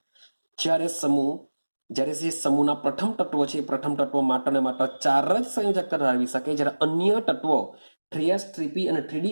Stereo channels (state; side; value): inverted; both; correlation -1.00